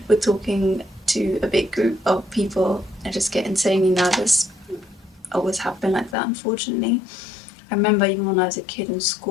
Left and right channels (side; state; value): right; drops out; at 6.2 s